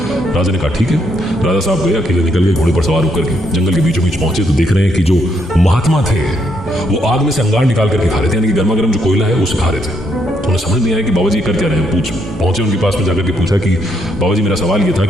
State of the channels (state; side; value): normal; both; correlation 0.74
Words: राजा ने कहा ठीक है। राजा साहब गए, अकेले निकल गए, घोड़े पर सवार होकर के जंगल के बीचों बीच पहुंचे तो देख रहे हैं कि जो महात्मा थे वो आग में से अंगार निकाल करके खा रहे थे, यानी कि गर्मा गर्म जो कोयला है उसे खा रहे थे। तो उन्हें समझ नहीं आया कि बाबा जी कर क्या रहे हैं। पहुंचे उनके पास में जाकर के पूछा कि बाबा जी, मेरा सवाल ये था